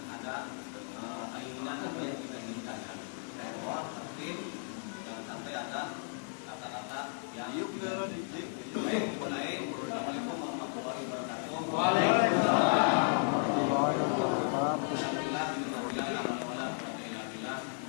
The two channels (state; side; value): silent; right; 55 dB below the other